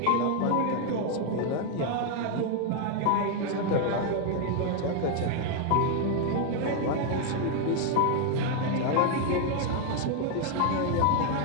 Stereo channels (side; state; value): both; different; correlation 0.01